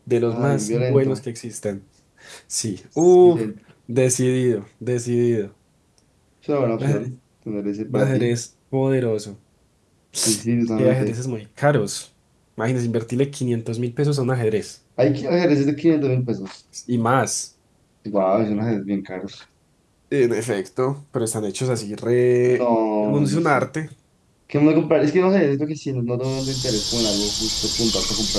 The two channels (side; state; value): both; identical; correlation 1.00